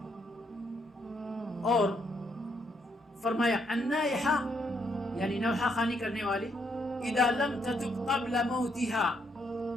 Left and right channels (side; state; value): both; normal; correlation 0.75